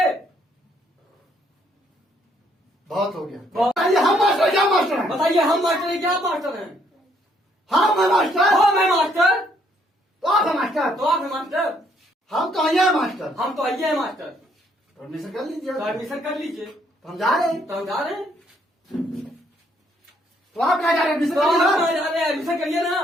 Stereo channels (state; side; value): normal; both; correlation 0.68